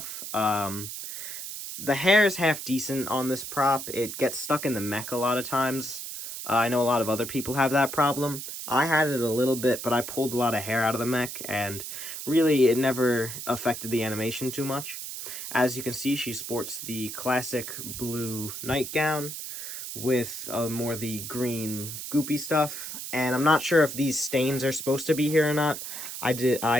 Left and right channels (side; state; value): right; noise; hiss, 8 dB below the sound